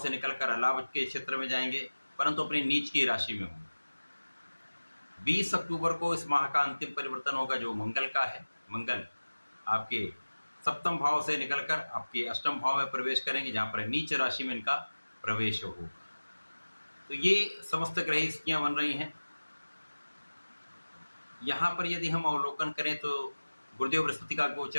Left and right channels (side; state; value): both; inverted; correlation -1.00